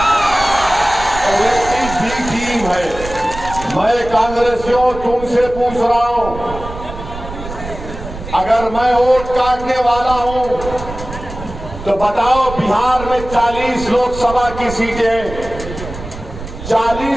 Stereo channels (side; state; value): right; noise; rumble, 11 dB below the sound